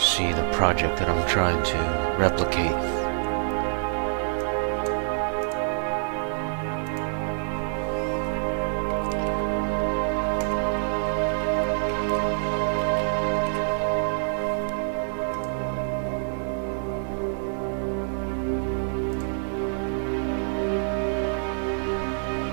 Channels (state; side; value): silent; left; 61 dB below the other